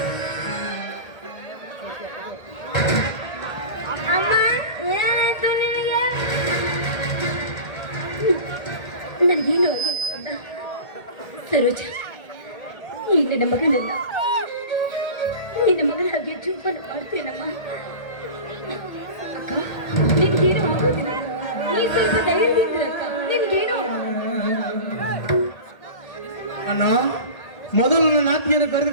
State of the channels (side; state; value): right; late; 1.8 ms